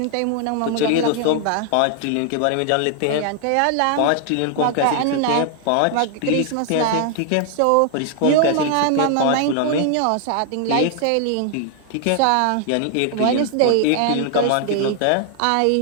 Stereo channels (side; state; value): both; different; correlation 0.00